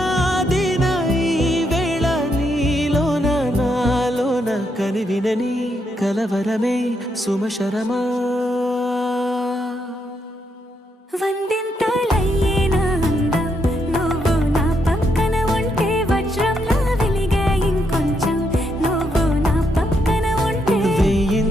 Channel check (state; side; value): normal; both; correlation 0.78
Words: ఈ వేళ నీలోన నాలోన కనివినని కలవరమే సుమశరమా వందింతలయ్యే నా అందం నువ్వు నా పక్కన ఉంటే వజ్రంలా వెలిగే ఇంకొంచెం నువ్వు నా పక్కన ఉంటే